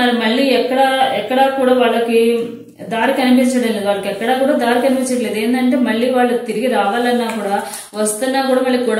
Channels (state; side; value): identical; both; correlation 1.00